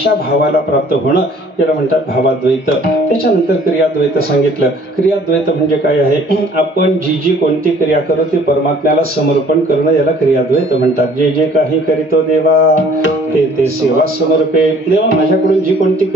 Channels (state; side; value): normal; both; correlation 0.55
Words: भावाला प्राप्त होणं याला म्हणतात भावाद्वैत. त्याच्यानंतर क्रियाद्वैत सांगितलं. क्रियाद्वैत म्हणजे काय आहे, आपण जी जी कोणती क्रिया करू ती परमात्म्याला समर्पण करणं याला क्रियाद्वैत म्हणतात. जे जे काही करीतो देवा ते ते सेवा समर्पे. देवा माझ्याकडून जी कोणती